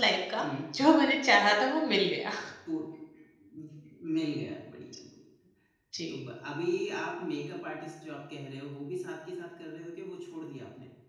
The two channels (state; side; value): identical; both; correlation 1.00